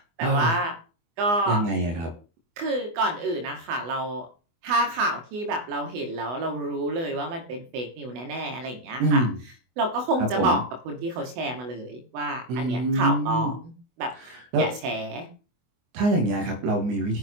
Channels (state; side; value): late; left; 24 ms